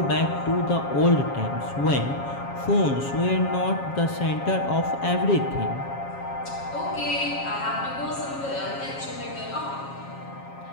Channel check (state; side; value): late; right; 7.3 ms